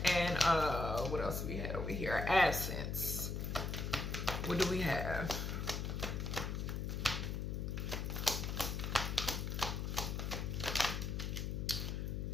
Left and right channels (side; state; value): left; noise; hum, 2 dB below the sound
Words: and what else we had over here? Absence. What do we have?